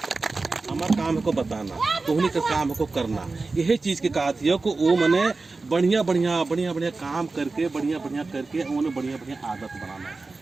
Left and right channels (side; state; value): left; quieter; 3.7 dB